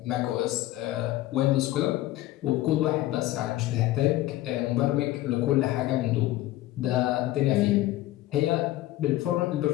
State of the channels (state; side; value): quieter; right; 15.8 dB